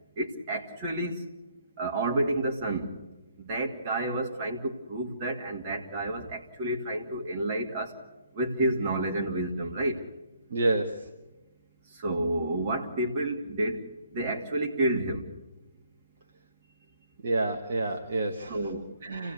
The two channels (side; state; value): both; inverted; correlation -0.67